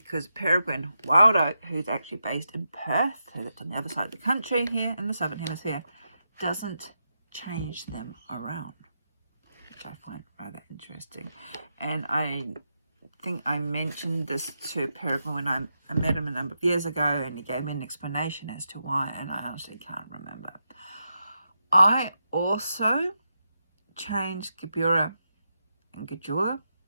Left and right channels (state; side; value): inverted; both; correlation -0.86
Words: Peregrine Wild Oak, who's actually based in Perth, who lives on the other side of the country here in the Southern Hemisphere, doesn't change them around, which I find rather interesting. And I think I mentioned this to Peregrine when I met him a number of years ago, and he gave me an explanation as to why, and I honestly can't remember. I also change Gabura and Gijula